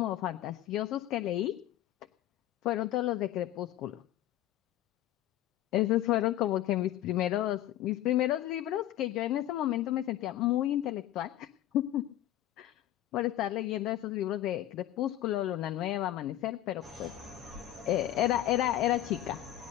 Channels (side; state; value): right; quieter; 13.2 dB